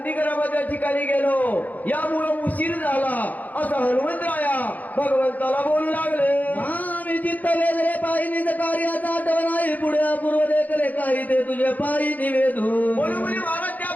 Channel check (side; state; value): right; late; 0.080 ms